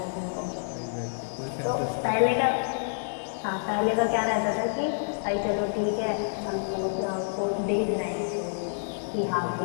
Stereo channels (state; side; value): silent; right; digital silence